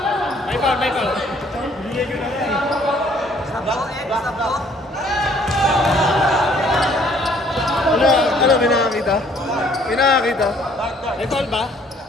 May foul. Ano, may nakakita? May foul ba?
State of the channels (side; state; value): both; normal; correlation 0.61